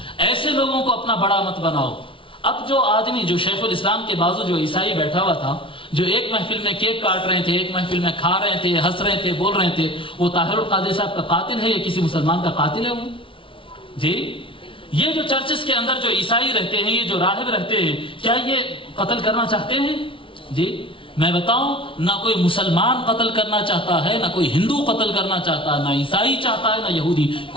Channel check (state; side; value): late; right; 0.25 ms